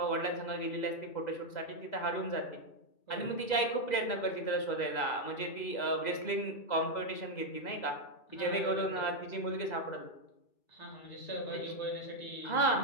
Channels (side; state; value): right; late; 2.0 ms